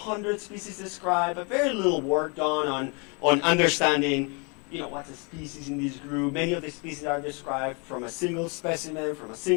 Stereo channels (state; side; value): quieter; right; 33.3 dB